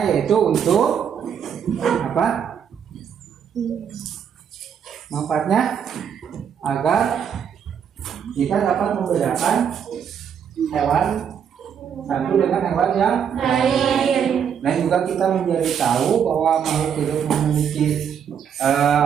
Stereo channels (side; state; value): left; quieter; 7.9 dB